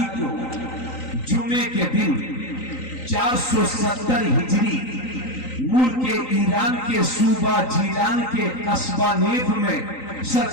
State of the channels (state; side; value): late; right; 3.9 ms